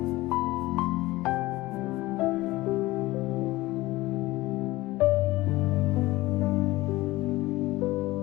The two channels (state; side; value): quieter; right; 18.9 dB